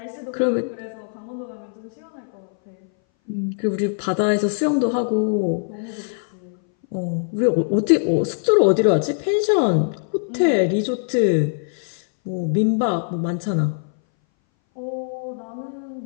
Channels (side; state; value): right; silent; 60 dB below the other